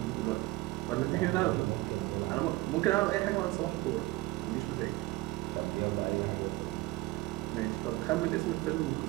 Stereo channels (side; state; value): left; quieter; 19.7 dB